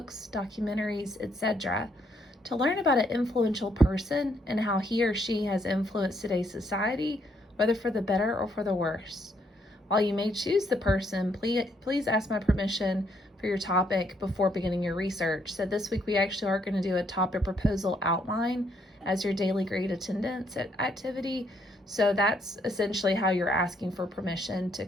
documentaries, etc., to learn about an influential person and how he or she has influenced today's society, whether for the better or for the worse. While you may choose the person, please ask my permission for your topic before beginning your research. So this week we actually are going to do a topic proposal outline as your daily grade attendance activity. So that's essentially how you're asking for permission to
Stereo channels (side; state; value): both; normal; correlation 0.72